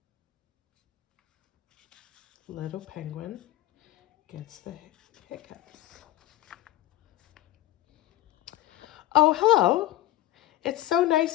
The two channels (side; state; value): right; quieter; 15.4 dB